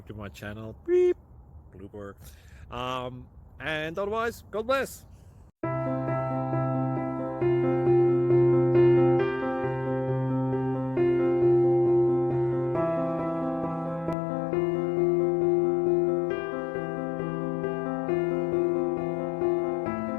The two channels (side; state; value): right; drops out; at 14.2 s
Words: to my channel. Beep. Blooper. And otherwise, God bless.